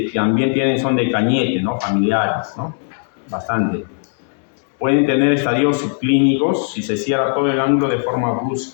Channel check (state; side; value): silent; right; digital silence